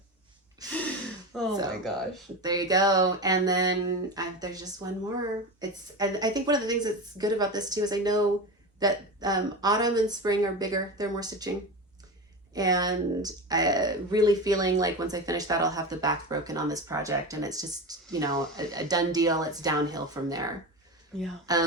Oh my gosh. There you go. And then there's just one more. And I think one of the things that's good about this too is I know that autumn and spring are bigger. They're more stitching. And really feeling like once I finish that, I'll have the back broken on this project. And it's just, you know, a done deal. It's downhill from there. Yeah.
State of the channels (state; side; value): normal; both; correlation 0.24